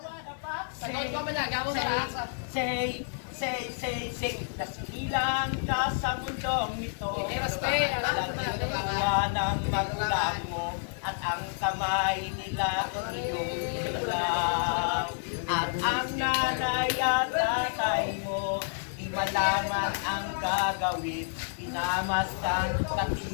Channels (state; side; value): silent; right; digital silence